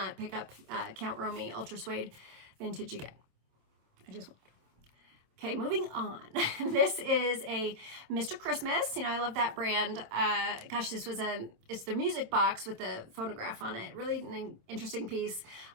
pick up Count Romy Ultra Suede Vintage again. I just won't. Okay, moving on. This is a Mr. Christmas. You know, I love that brand. Gosh, it's their music box with the phonograph on it. Really an interesting piece.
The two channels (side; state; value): left; late; 26 ms